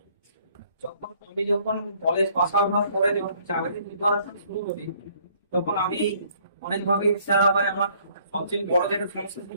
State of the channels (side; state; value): both; inverted; correlation -0.62